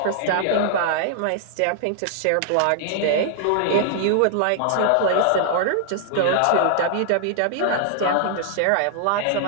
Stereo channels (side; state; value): both; different; correlation -0.01